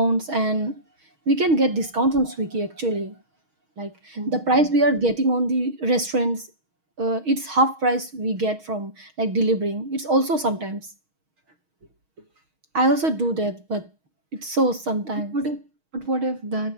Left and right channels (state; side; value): late; left; 6.3 ms